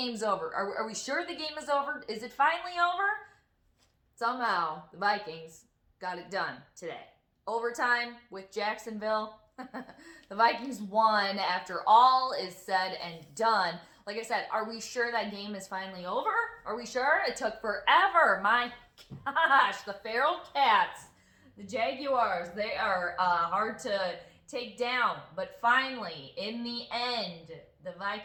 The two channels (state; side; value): identical; both; correlation 1.00